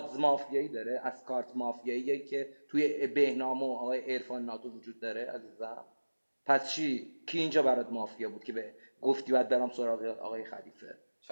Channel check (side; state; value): both; inverted; correlation -1.00